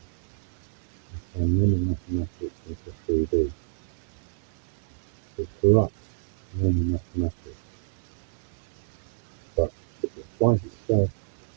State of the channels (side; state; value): left; silent; digital silence